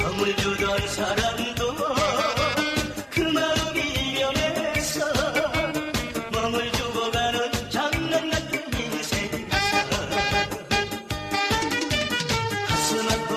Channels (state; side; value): identical; both; correlation 1.00